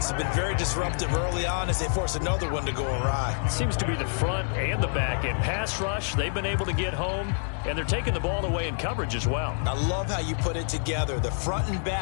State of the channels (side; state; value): right; silent; 60 dB below the other